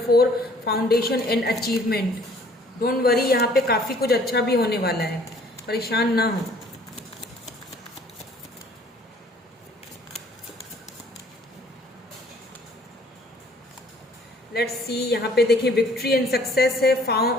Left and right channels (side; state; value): both; normal; correlation 0.57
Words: foundation and achievement. Don't worry, यहाँ पे काफी कुछ अच्छा भी होने वाला है, परेशान ना हो। लेट्स सी, यहाँ पे देखिए विक्ट्री एंड सक्सेस है,